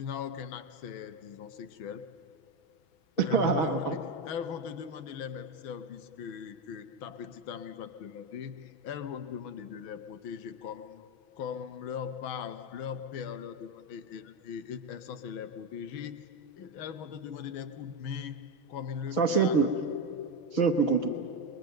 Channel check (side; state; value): right; late; 6.1 ms